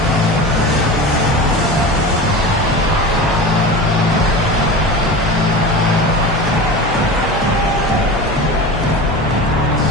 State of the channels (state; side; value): normal; both; correlation 0.30